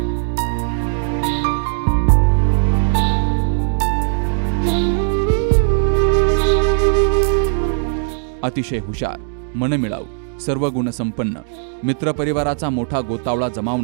अतिशय हुशार, मनमिळाऊ, सर्व गुणसंपन्न, मित्रपरिवाराचा मोठा गोतावळा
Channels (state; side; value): silent; left; digital silence